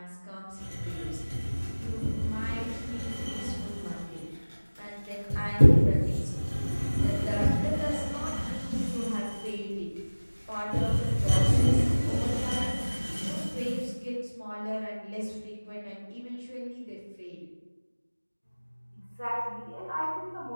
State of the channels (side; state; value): both; inverted; correlation -1.00